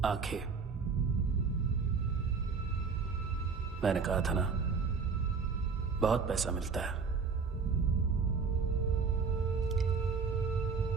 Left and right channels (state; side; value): quieter; left; 5.1 dB